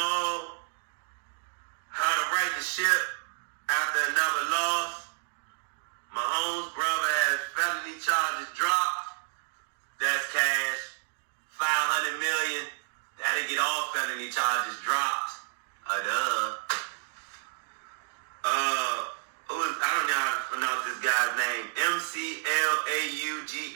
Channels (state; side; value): silent; left; digital silence